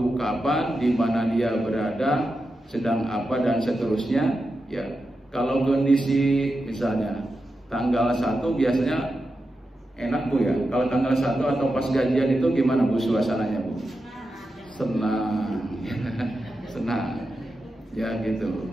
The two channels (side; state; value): both; normal; correlation 0.89